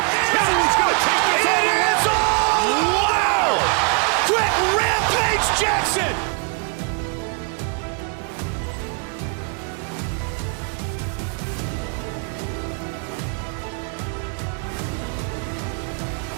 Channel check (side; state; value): left; quieter; 37.2 dB